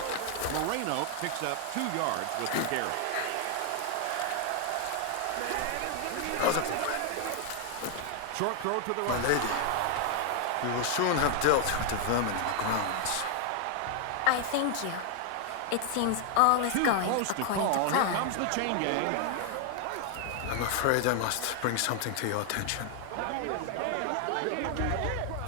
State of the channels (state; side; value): different; both; correlation 0.00